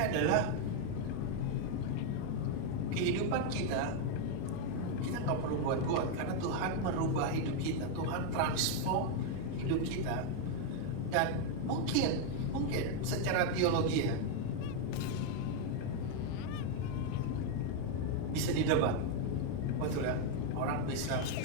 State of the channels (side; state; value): both; different; correlation 0.01